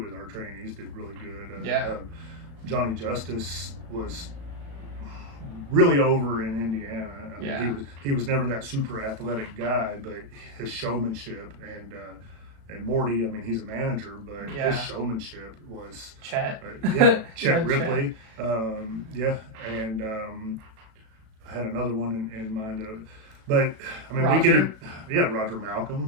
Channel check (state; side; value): late; left; 36 ms